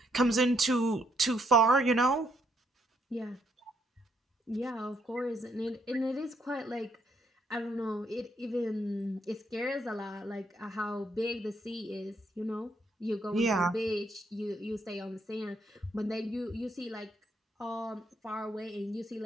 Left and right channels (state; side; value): normal; both; correlation 0.73